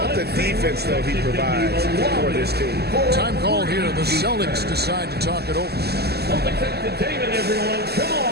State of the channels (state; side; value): late; left; 0.47 ms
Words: the defense, though, he provides for this team? Time call here. The Celtics decide to talk it over. Celtics entertainment, everyone. Come